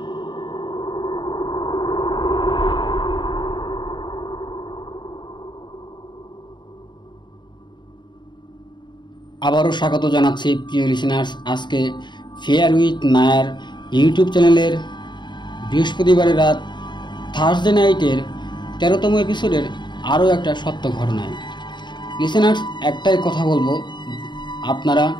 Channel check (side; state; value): right; late; 0.22 ms